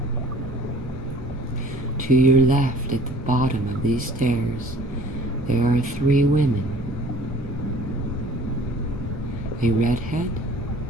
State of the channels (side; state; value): both; normal; correlation 0.50